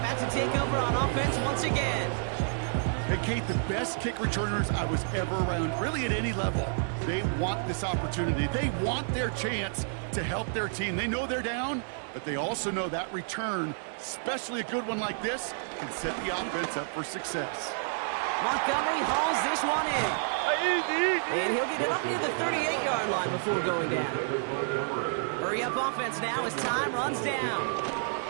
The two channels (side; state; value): left; silent; digital silence